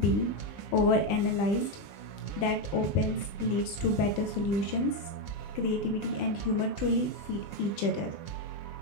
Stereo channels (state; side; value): late; right; 20 ms